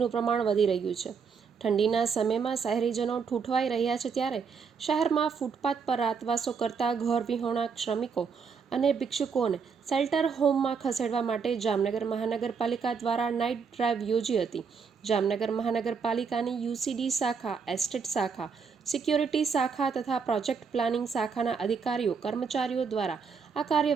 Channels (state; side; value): quieter; left; 5.8 dB